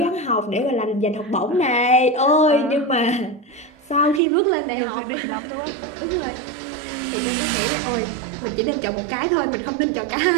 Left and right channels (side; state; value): left; drops out; at 4.2 s